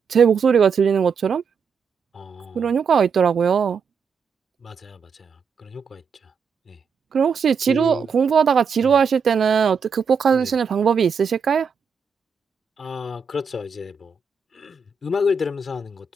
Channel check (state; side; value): quieter; left; 5.7 dB